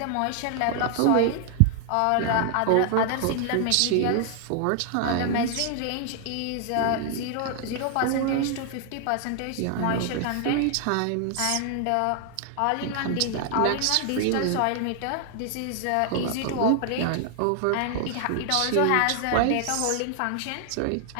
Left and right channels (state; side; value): different; both; correlation 0.00